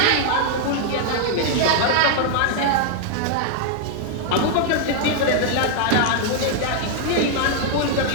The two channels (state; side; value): different; both; correlation 0.00